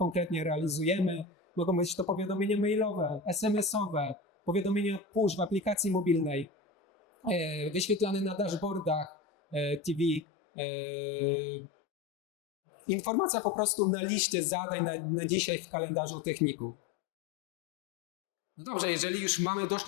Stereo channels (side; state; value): right; drops out; at 10.2 s